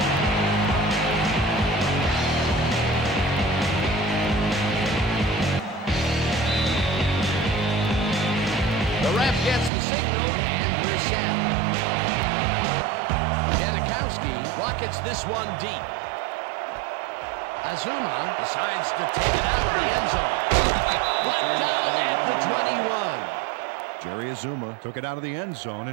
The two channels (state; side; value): drops out; left; at 9.7 s